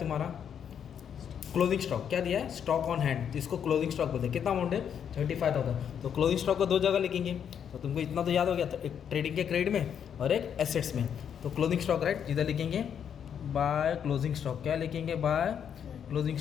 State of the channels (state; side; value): quieter; right; 8.3 dB